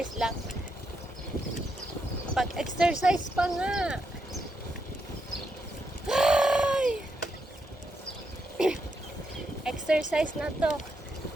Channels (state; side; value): normal; both; correlation 0.82